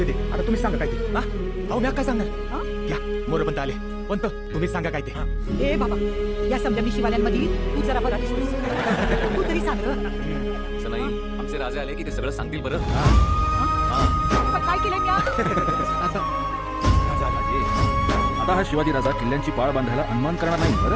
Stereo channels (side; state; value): both; identical; correlation 1.00